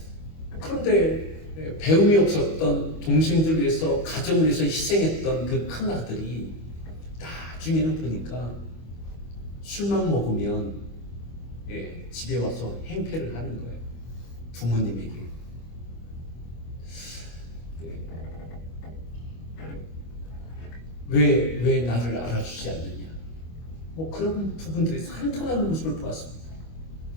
그런데 배움이 없었던 동생들을 위해서 가정을 위해서 희생했던 그 큰 아들이 나중에는 보니까 술만 먹으면 집에 와서 행패를 하는 거예요. 부모님에게. 왜 나를 알아주지 않느냐. 뭐 그런 부분들이 한탄하는 모습을 보았습니다.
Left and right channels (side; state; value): right; late; 25 ms